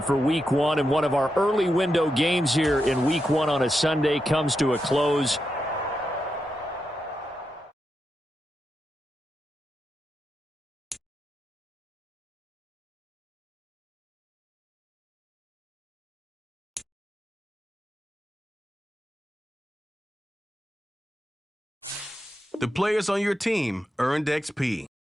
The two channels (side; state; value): both; normal; correlation 0.86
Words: for Week 1, and one of our early window games here in Week 1 on a Sunday comes to a close. The players on your team earned XP.